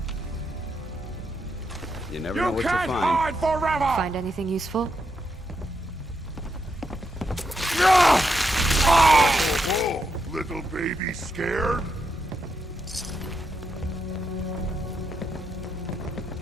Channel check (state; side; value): normal; both; correlation 0.82